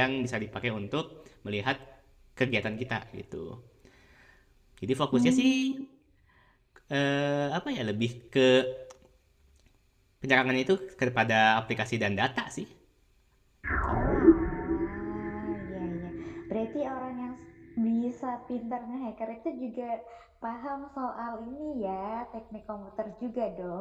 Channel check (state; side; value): identical; both; correlation 1.00